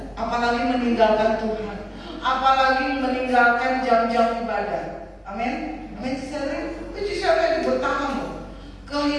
apalagi meninggalkan Tuhan. Apalagi meninggalkan jam-jam ibadah. Amin. Amin. Ciserli bertahan loh.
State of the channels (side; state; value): both; identical; correlation 1.00